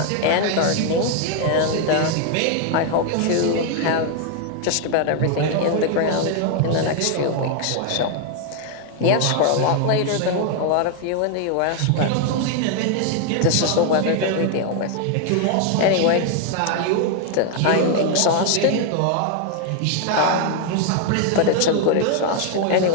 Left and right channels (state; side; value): different; both; correlation 0.00